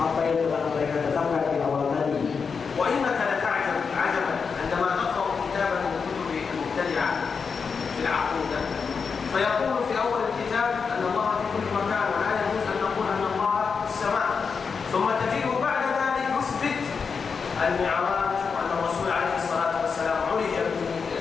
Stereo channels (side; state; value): right; quieter; 5.6 dB